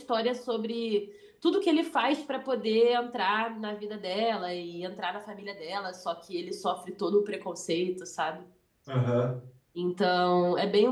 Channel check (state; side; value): identical; both; correlation 1.00